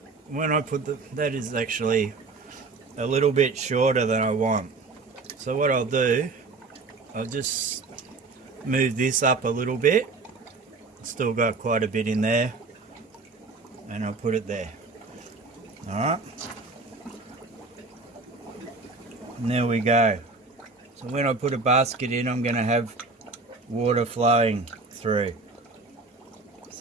When I put that is actually a little bit shorter than I want. So what I'll do, I'll just move this up a little bit. Still got quite a bit in there. And I'll put it there. Alright. And there we go. So when I put a basket in, I'm going to have water flowing through.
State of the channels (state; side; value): quieter; left; 3.9 dB